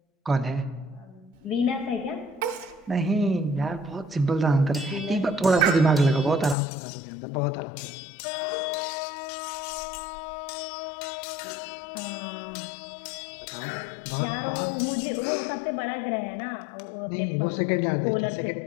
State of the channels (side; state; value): right; drops out; at 6.6 s